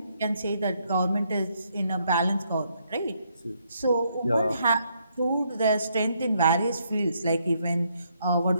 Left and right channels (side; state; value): both; inverted; correlation -0.74